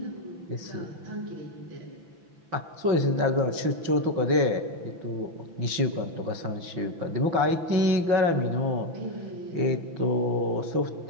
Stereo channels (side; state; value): left; late; 6.0 ms